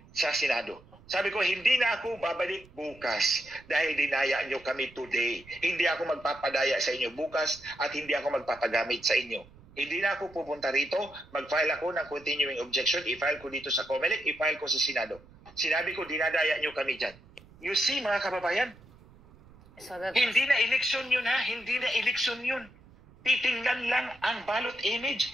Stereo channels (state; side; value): noise; right; rumble, 24 dB below the sound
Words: sa Senado. Sabi ko, hindi na ako babalik bukas dahil dinaya nyo kami today. Hindi ako magpapadaya sa inyo bukas at hindi ako magpapagamit sa inyo. Hindi na ako pupunta rito, mag-file ako ng continuing objection, i-file ko dito sa Comelec, i-file ko sa Senado. Sinabi ko, dinadaya nyo kami dyan. You see, mga kababayan, hindi na eleksyon yun ha, hindi na eleksyon yun. Titingnan lang ang ballot image.